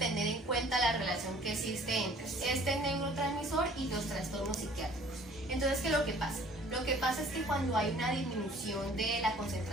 en cuenta la relación que existe entre este neurotransmisor y los trastornos psiquiátricos. Entonces, ¿qué es lo que pasa? Lo que pasa es que cuando hay una disminución de la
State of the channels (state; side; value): normal; both; correlation 0.53